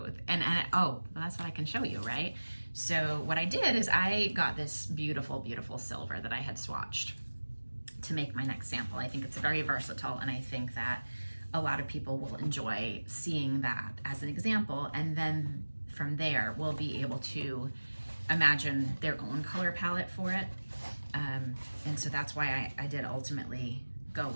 And oh, well, that's what I can show you, right? So what I did is I got this beautiful, beautiful silver that I had swatched to make my next sample. I think it's very versatile, and I think that a lot of people will enjoy seeing that as an example, and then from there we'll be able to imagine their own color palette for it. And so that's why I did ultimately go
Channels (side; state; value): both; inverted; correlation -1.00